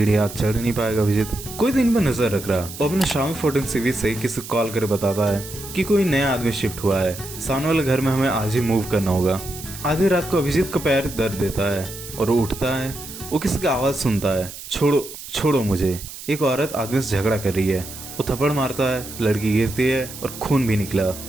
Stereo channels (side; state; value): right; noise; hiss, 12 dB below the sound